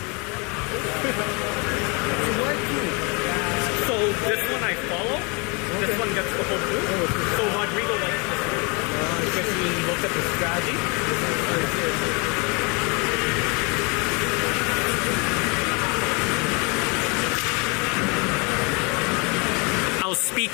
So this one I follow. This one gets the whole group. So Rodrigo likes this one because he looked at the strategy. I'll speak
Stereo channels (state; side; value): quieter; right; 30.9 dB